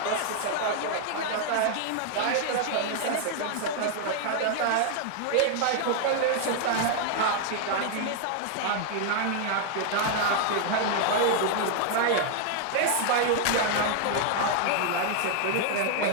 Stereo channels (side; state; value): both; different; correlation 0.00